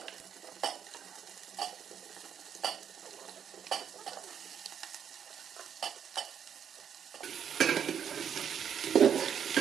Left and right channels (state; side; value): quieter; left; 8.2 dB